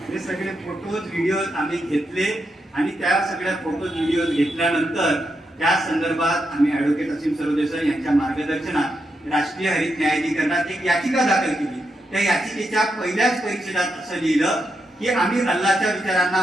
हे सगळे फोटोज व्हिडिओज आम्ही घेतले आणि त्या सगळ्या फोटोज व्हिडिओज घेतल्यानंतर त्या संदर्भात आम्ही ऍडव्होकेट असीम सरोदे सर यांच्या मार्गदर्शनात राष्ट्रीय हरित न्यायाधिकरणात एक याचिका दाखल केली। त्या याचिकेच्या पहिल्याच परिच्छेदात असं लिहिलं की आम्ही अल्लाच्या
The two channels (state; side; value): normal; both; correlation 0.84